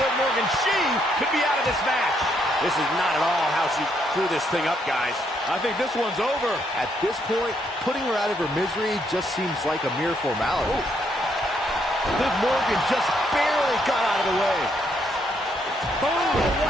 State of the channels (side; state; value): both; normal; correlation 0.74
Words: Liv Morgan, she could be out of this match. This is not at all how she threw this thing up, guys. I think this one's over. At this point, putting her out of her misery just seems like a mere formality. Ooh. Liv Morgan just barely got out of the way. Oh,